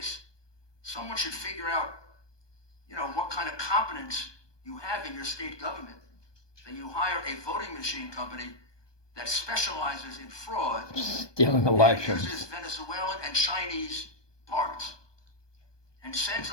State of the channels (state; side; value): late; right; 1.2 ms